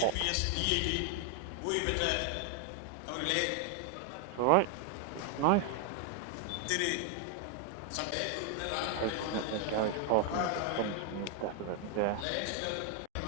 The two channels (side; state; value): both; different; correlation 0.00